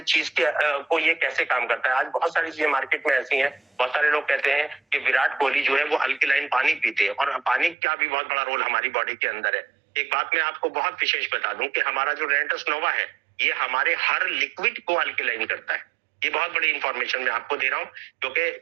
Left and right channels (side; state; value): left; drops out; at 7.8 s